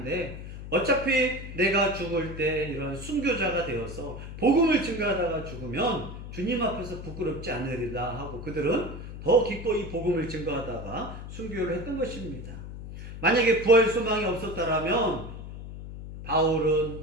어차피 내가 죽을 때 이런 순교자가 되어서 복음을 증거하다가 죽으면 주님 앞에서 부끄럽지 않으리다 하고 그들은 더 기꺼이 복음을 증거하다가 순교를 했던 것입니다. 만약에 부활 소망이 없었다라면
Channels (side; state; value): left; noise; hum, 10 dB below the sound